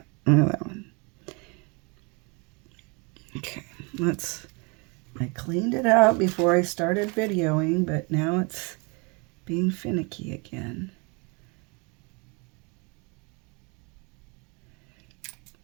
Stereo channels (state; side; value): quieter; left; 31.0 dB